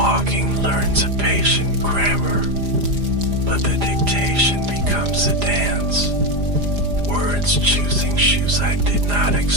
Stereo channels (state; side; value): late; left; 4.9 ms